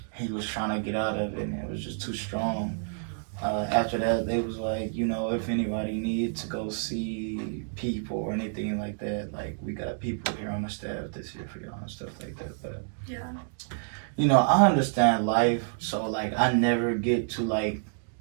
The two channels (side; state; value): left; silent; digital silence